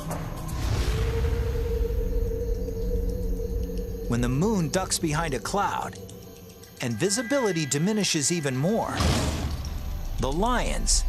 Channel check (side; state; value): both; identical; correlation 1.00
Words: When the moon ducks behind a cloud and visibility diminishes even more, the lions,